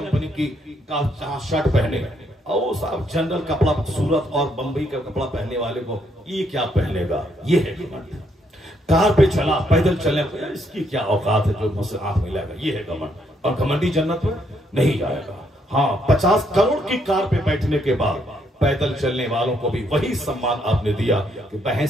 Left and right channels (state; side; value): normal; both; correlation 0.73